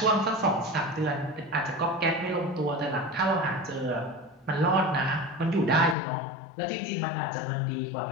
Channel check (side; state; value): right; drops out; at 6.0 s